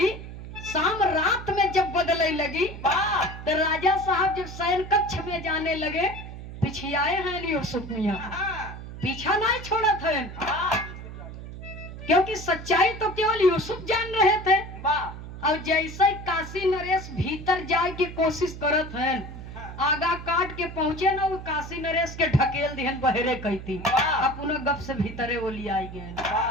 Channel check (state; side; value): noise; right; hum, 11 dB below the sound